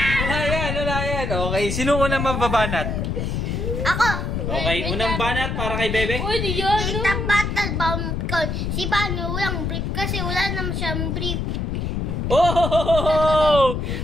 Wala yan. Okay, sino unang mababanat? Ako. Okay, unang banat para kay Bebe. Uy, di yan. Kita battle bomb ko. Si Bano walang brief kasi wala naman siyang brief. Oh!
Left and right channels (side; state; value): left; noise; rumble, 1 dB below the sound